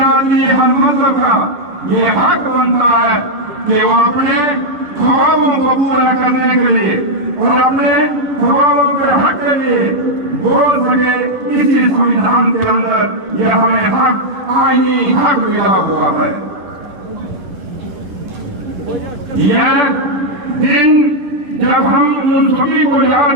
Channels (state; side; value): late; left; 10 ms